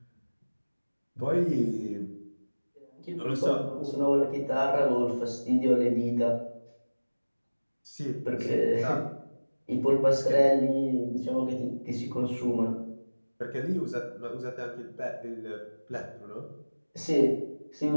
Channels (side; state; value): both; inverted; correlation -1.00